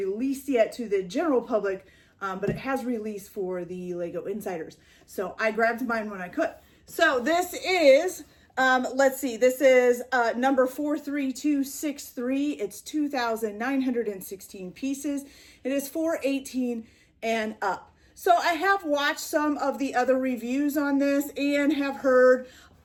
yet to the general public, but it has released for the Lego Insiders. So I grabbed mine when I could. So this is... let's see, this is number 43263. It's 2,916 pieces. It is 418 and up. So I have watched some of the other reviews on this and have heard,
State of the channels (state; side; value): identical; both; correlation 1.00